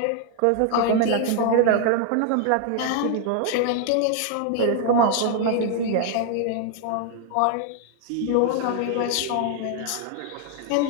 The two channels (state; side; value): different; both; correlation 0.00